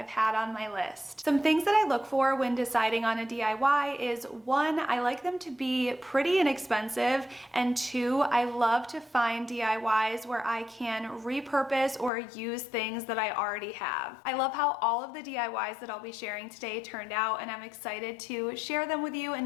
had on my list. Some things that I look for when deciding on a DIY is one, I like them to be pretty inexpensive, and two, I love to find DIYs where I can repurpose or use things that I already have. I love how all of the DIYs that I'll be sharing today turned out, and I'm excited to share them with you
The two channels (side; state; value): right; drops out; at 12.1 s